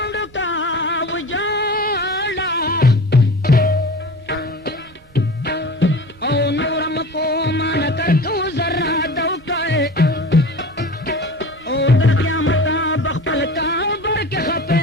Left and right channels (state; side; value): normal; both; correlation 0.36